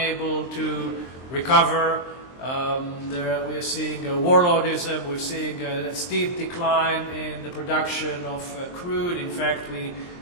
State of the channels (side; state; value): right; late; 23 ms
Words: to recover. We are seeing warlordism, we're seeing a steep decline in the production of crude. In fact, we